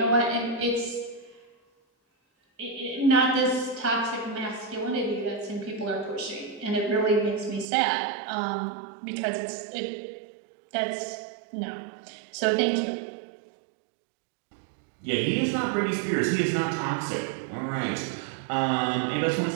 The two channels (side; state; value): left; drops out; at 7.7 s